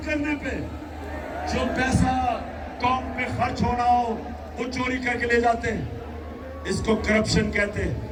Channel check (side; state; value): both; identical; correlation 1.00